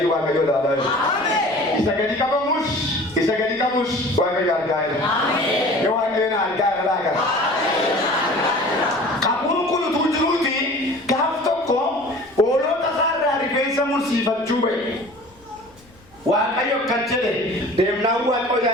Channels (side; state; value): left; noise; rumble, 28 dB below the sound